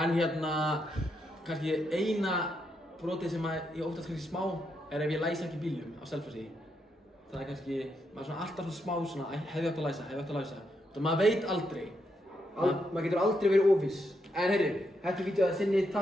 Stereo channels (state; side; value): normal; both; correlation 0.80